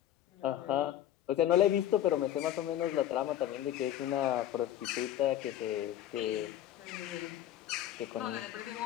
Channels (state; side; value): quieter; right; 12.0 dB